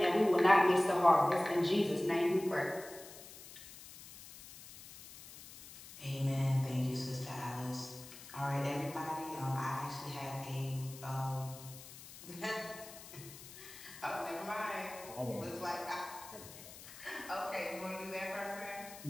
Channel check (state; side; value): noise; left; hiss, 16 dB below the sound